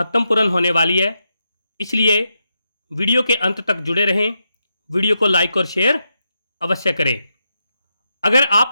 होने वाली है, इसलिए वीडियो के अंत तक जुड़े रहें। वीडियो को लाइक और शेयर अवश्य करें। अगर आप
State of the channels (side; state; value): both; inverted; correlation -0.85